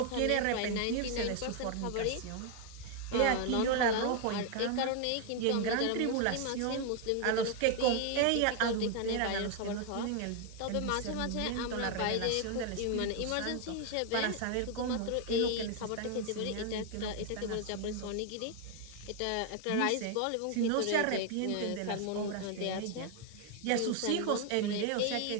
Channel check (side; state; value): both; different; correlation 0.00